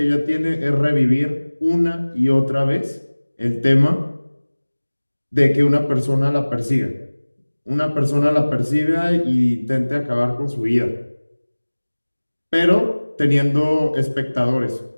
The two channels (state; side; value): inverted; both; correlation -1.00